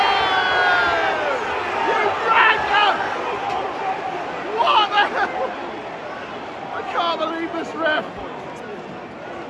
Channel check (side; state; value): both; identical; correlation 1.00